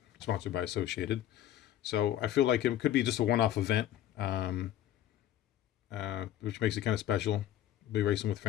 sponsored by Associated. So I feel like it could be just a one-off event, which makes it kind of special. I'll be racing with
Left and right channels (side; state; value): right; quieter; 12.0 dB